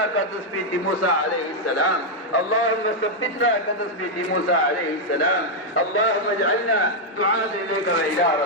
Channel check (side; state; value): both; normal; correlation -0.01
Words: كتثبيت موسى عليه السلام، اللهم ثبتنا كتثبيت موسى عليه السلام. اللهم اجعلنا دعاة إليك وإلى